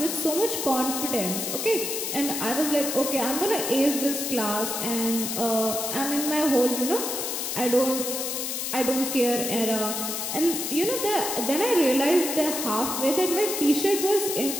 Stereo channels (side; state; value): left; noise; hiss, 3 dB below the sound